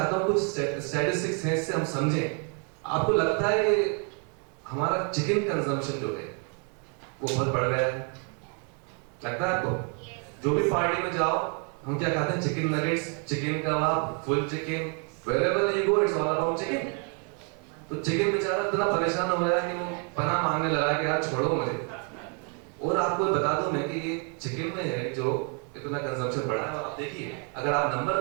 हूं कुछ स्टैटिस्टिक्स हैं, इससे हम समझें। आपको लगता है कि हमारा चिकन कंजम्पशन जो है वो बहुत बढ़ गया है, लगता है आपको? जो भी पार्टी में जाओ हम क्या खाते हैं? Chicken nuggets, chicken kebab, full chicken, wherever you go it's all about chicken। तो चिकन बेचारा इतना परेशान हो गया कि वो पनाह मांगने लगा कि यार छोड़ो मुझे। और आपको बता दूं मैं कि ये चिकन में है जो इतना कंजम्पशन बढ़ा है। आप देखिए, अगर आप नंबर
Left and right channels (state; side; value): quieter; left; 39.3 dB